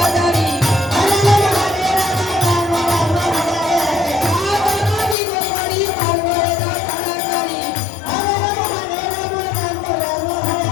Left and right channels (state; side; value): drops out; right; at 5.2 s